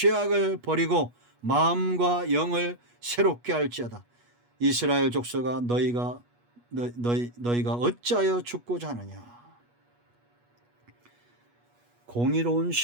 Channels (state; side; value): late; left; 8.3 ms